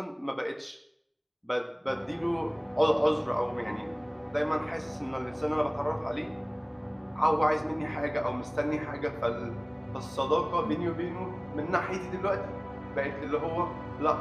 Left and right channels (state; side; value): identical; both; correlation 1.00